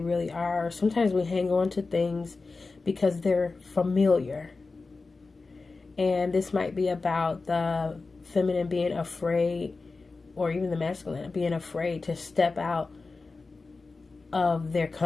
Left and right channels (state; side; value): quieter; right; 3.9 dB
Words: are. Sometimes we hang on to things because they're familiar. And this might be about the feminine being afraid, or even the masculine being afraid to step out of their